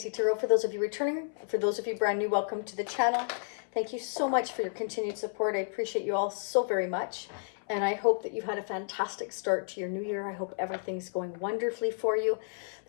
Tarot. For those of you returning, for those of you brand new, welcome to the channel. Thank you so much for your continued support. I appreciate you all so very much. And I hope that you've had a fantastic start to your new year. I hope everything's going wonderfully for you.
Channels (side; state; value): right; silent; 57 dB below the other